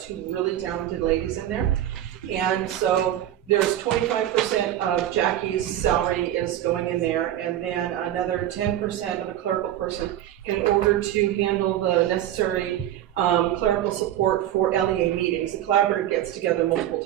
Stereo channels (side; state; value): left; quieter; 12.3 dB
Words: really talented ladies in there. And so there's 25% of Jackie's salary is going in there, and then another 10% of a clerical person in order to handle the necessary clerical support for LEA meetings. The collaborative gets together multiple